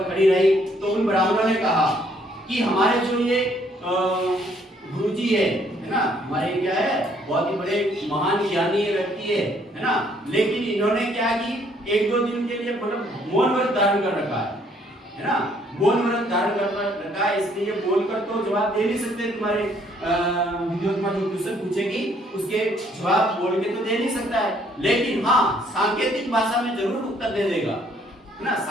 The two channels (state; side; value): normal; both; correlation 0.65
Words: खड़ी रही। तो उन ब्राह्मणों ने कहा कि हमारे जो ये गुरुजी है ना, हमारे क्या है, बहुत ही बड़े महान ज्ञानी व्यक्ति है ना, लेकिन इन्होंने क्या की, एक दो दिन के लिए मतलब मौन व्रत धारण कर रखा है ना, मौन व्रत धारण कर रखा है, इसलिए बोलकर तो जवाब दे नहीं सकते। तुम्हारे विद्यार्थी जो क्वेश्चन पूछेगी उसके जवाब बोल के तो दे नहीं सकता है, लेकिन हाँ सांकेतिक भाषा में जरूर उत्तर दे देगा है ना,